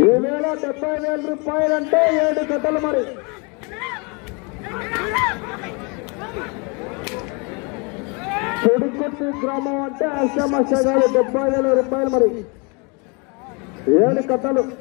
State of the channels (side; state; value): right; quieter; 31.7 dB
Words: ఈవేళ 70,000 రూపాయలంటే 7 కట్టలు మరి. చెడుకొట్టి గ్రామం అంటే ఆశామాషా కాదు. 70,000 రూపాయలు మరి. 7 కట్టలు.